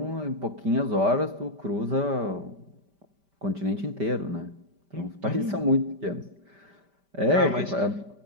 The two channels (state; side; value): late; left; 5.1 ms